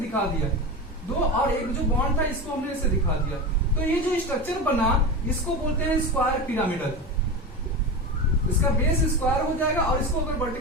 दिया दो, और एक जो बॉन्ड था इसको हमने ऐसे दिखा दिया। तो ये जो स्ट्रक्चर बना इसको बोलते हैं स्क्वायर पिरामिडल। इसका बेस स्क्वायर हो जाएगा और इसको अगर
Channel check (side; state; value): both; normal; correlation 0.24